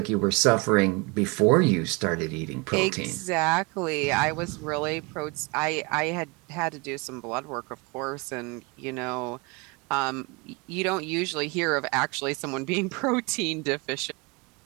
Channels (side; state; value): left; quieter; 28.3 dB